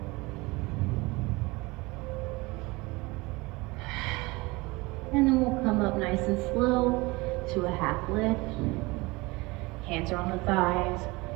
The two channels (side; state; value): left; quieter; 23.5 dB